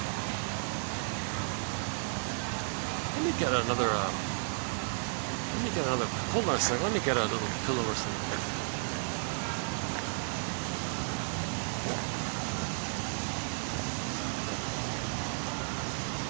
Let me get another. Let me get another. Hold on a second. Let me get a little pillow or something.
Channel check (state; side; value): silent; left; 56 dB below the other